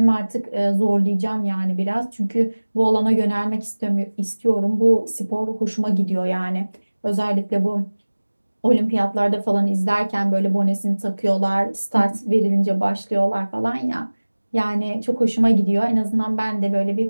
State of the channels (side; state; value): both; inverted; correlation -1.00